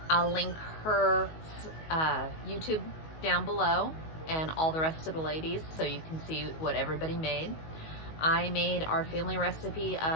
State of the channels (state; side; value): late; right; 19 ms